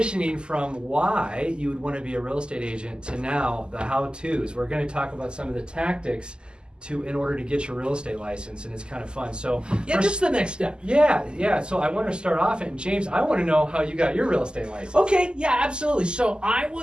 from why you would want to be a real estate agent to now the how-tos. We're going to talk about some of the tactics in order to get your real estate license, and it's kind of fun. So just the next step. Yeah. So I want to start off, and James, I want to know how you got your real estate license. Okay, yeah, absolutely. So I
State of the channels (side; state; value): left; late; 0.048 ms